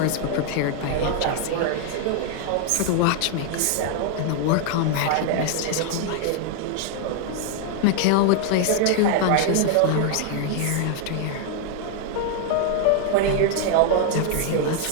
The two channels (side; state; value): both; different; correlation 0.00